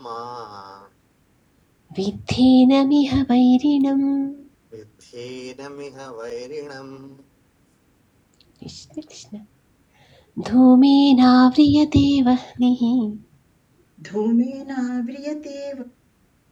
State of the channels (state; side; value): identical; both; correlation 1.00